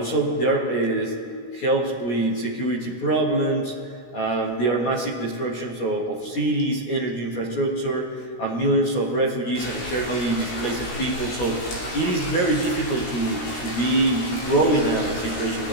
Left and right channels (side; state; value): right; late; 17 ms